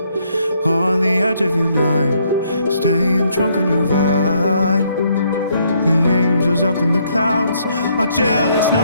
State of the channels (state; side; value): inverted; both; correlation -0.70